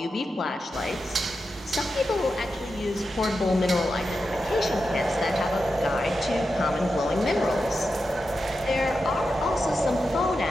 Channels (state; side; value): normal; both; correlation 0.89